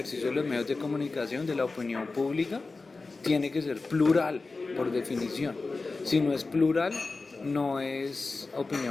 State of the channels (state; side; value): quieter; right; 3.8 dB